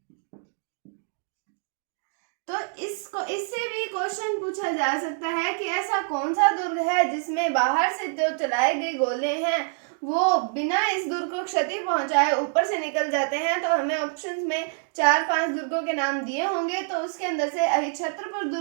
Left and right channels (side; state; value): left; silent; 61 dB below the other